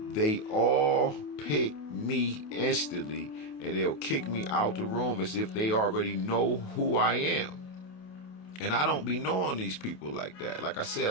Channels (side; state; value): right; late; 28 ms